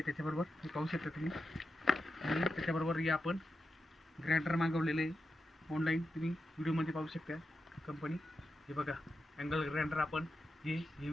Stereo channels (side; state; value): both; normal; correlation 0.89